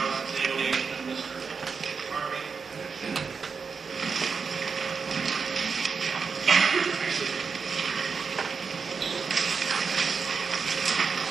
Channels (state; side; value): quieter; left; 5.4 dB